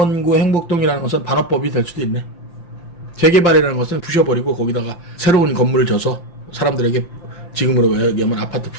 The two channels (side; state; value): right; late; 5.8 ms